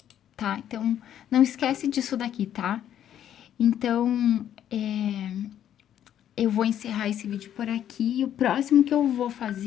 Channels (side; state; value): right; quieter; 10.5 dB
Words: tá? Então, não esquece disso daqui, tá? Então, eu vou encerrar esse vídeo por aqui. O próximo que eu vou